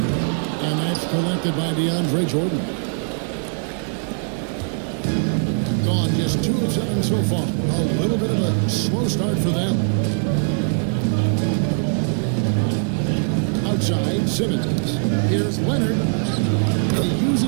And that's collected by DeAndre Jordan. Gone just 2 of 7 so far. A little bit of a slow start for them. Outside, Simmons. Here's Leonard. He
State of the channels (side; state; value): left; silent; 57 dB below the other